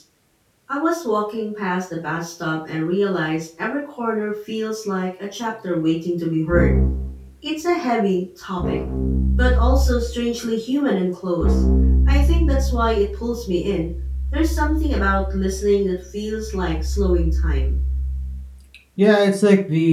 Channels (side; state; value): both; identical; correlation 1.00